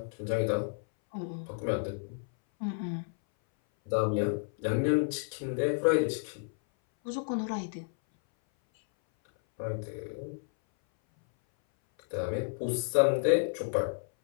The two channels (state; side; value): silent; right; 57 dB below the other